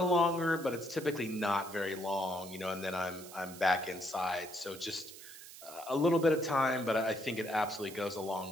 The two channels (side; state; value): right; noise; hiss, 15 dB below the sound